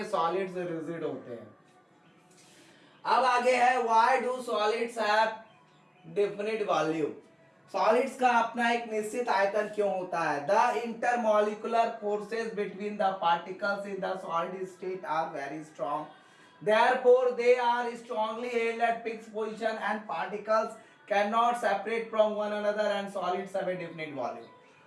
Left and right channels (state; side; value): identical; both; correlation 1.00